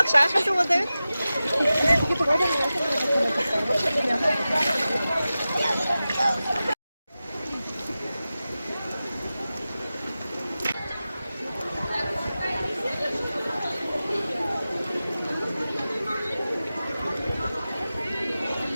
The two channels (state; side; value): inverted; both; correlation -0.95